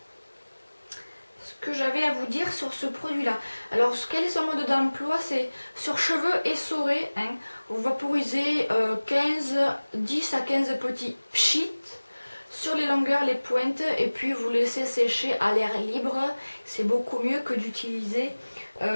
que j'avais à vous dire sur ce produit là. Alors quel est son mode d'emploi? C'est sur cheveux essorés, hein. Vous vaporisez 10 à 15 petits pchits sur les longueurs, les pointes, et puis vous laissez sécher à l'air libre. C'est beaucoup mieux que d'utiliser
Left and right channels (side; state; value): both; inverted; correlation -1.00